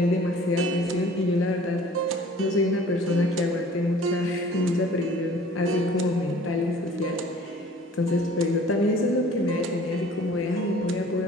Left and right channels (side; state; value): both; normal; correlation 0.50